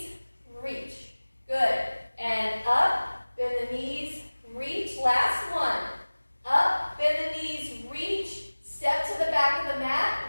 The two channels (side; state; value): both; inverted; correlation -1.00